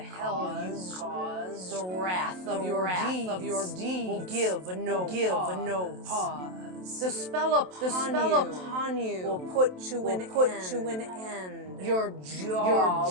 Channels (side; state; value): left; late; 27 ms